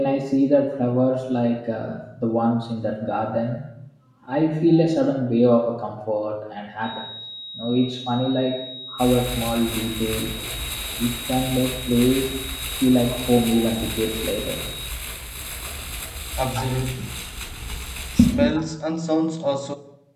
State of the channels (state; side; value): identical; both; correlation 1.00